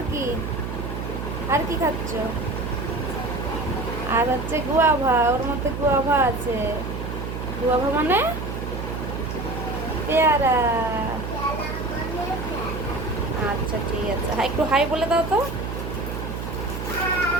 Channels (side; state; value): right; noise; hum, 5 dB below the sound